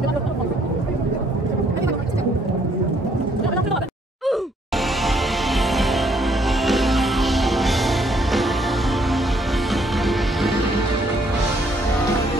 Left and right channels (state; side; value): normal; both; correlation 0.67